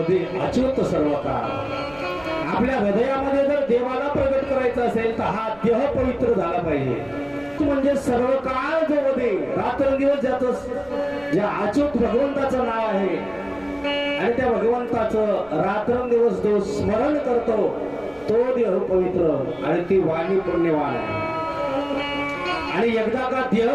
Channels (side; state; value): right; noise; rumble, 25 dB below the sound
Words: अच्युत सर्व काळ. आपल्या हृदयामध्ये जर देवाला प्रगट करायचं असेल तर हा देह पवित्र झाला पाहिजे. म्हणजे सर्व काळ जो वदे रात्रंदिवस ज्याचं ज्या अच्युत भगवंताचं नाव आहे आणि त्या भगवंताचं रात्रंदिवस जो स्मरण करतो तो देह पवित्र आणि ती वाणी पुण्यवान आहे. आणि एकदा का देह